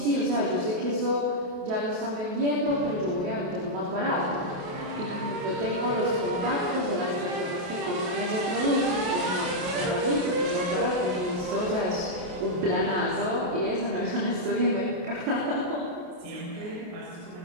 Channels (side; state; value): left; late; 28 ms